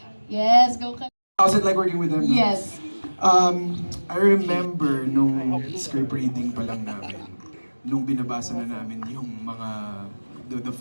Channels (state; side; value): inverted; both; correlation -1.00